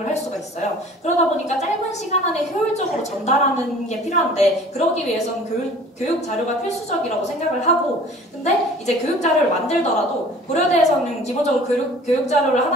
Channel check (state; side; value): normal; both; correlation 0.48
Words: 할 수가 있어요. 그러다 보니까 짧은 시간 안에 효율적으로 전달하는 게 필요한데 그러기 위해서는 교육 자료가 필수적이라고 생각을 하고, 근데 이제 교육 자료를 만들더라도 고려대에서는 기본적으로 교육 자료를